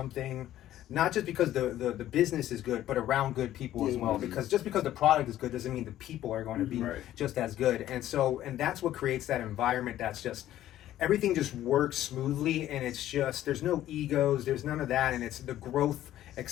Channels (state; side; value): quieter; right; 13.0 dB